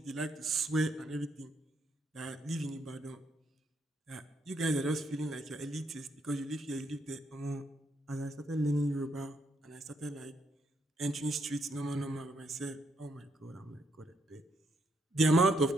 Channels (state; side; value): normal; both; correlation 0.75